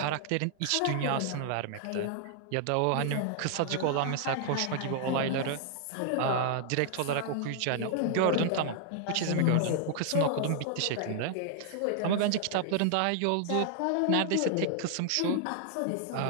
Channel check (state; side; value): different; both; correlation 0.00